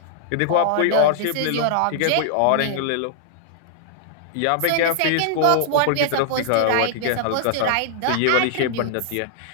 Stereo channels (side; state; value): both; different; correlation -0.01